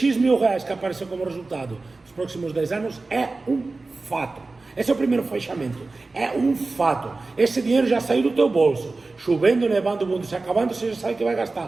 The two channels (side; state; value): left; quieter; 3.5 dB